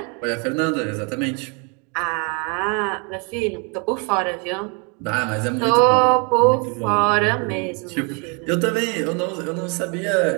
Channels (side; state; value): left; quieter; 34.3 dB